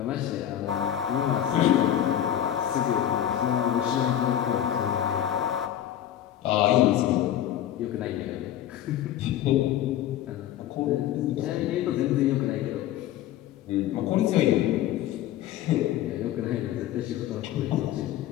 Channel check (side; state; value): right; quieter; 11.4 dB